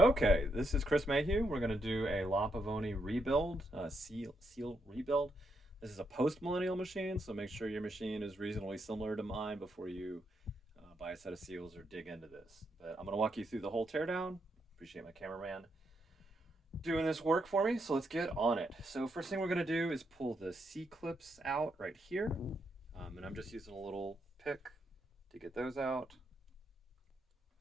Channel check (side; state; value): both; normal; correlation 0.79